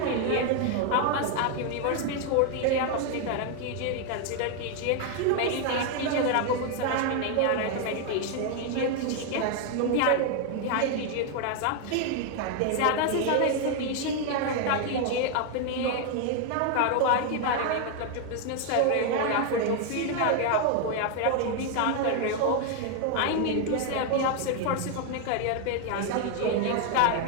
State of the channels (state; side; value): different; both; correlation 0.00